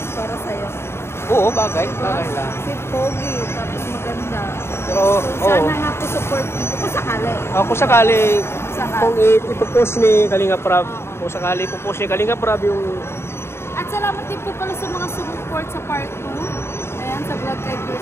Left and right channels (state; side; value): late; right; 0.12 ms